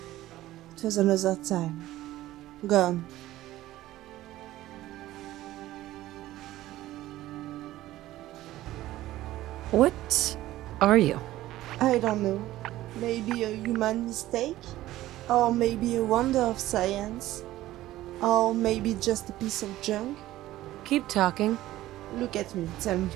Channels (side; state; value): left; quieter; 15.4 dB